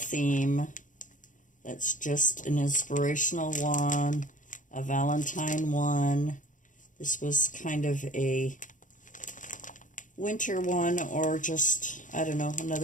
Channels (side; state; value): right; late; 0.37 ms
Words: That's just an inspirational one, a Valentine one. This was kind of a winter one, or just, I don't know,